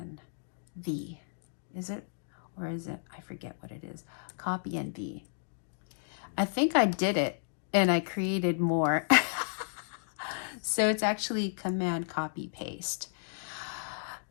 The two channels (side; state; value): right; silent; digital silence